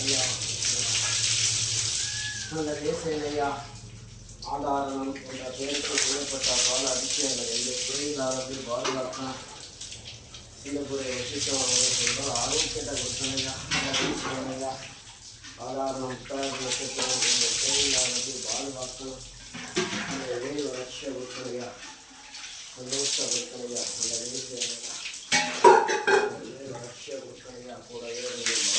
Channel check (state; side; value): identical; both; correlation 1.00